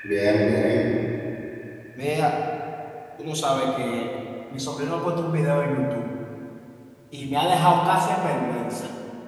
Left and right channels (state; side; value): identical; both; correlation 1.00